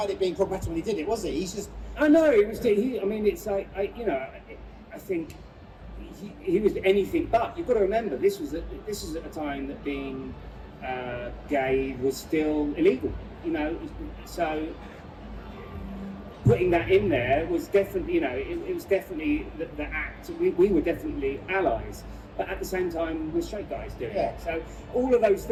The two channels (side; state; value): both; identical; correlation 1.00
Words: it being problematic when he did it, was he? He's just. I know it was. It's like I think he was anything but. You've got to remember this was at a time that being gay was still illegal. So putting that in there was definitely, it was definitely the act. We were definitely allies, but at the same time, we're straight guys doing it. So all of those